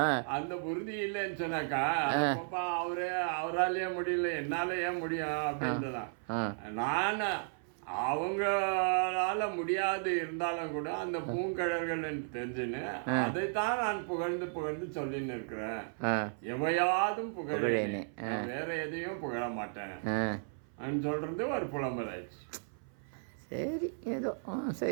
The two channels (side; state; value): left; silent; 55 dB below the other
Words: அந்த உறுதி இல்லைன்னு சொன்னாக்கா, அவராலேயே முடியல, என்னால ஏன் முடியும் அப்படின்றதான். நான் அவங்களால முடியாது இருந்தாலும் கூட அந்த பூங்கழல்கள் தெரிஞ்சுன்னு அதைத்தான் நான் புகழ்ந்து சொல்லின்னு இருக்கிறேன். எவையாதும் புகழேனே, வேற எதையும் புகழ மாட்டேன் சொல்றது ஒரு புலம்பல் ஆயிடுச்சு. சரி, ஏதோ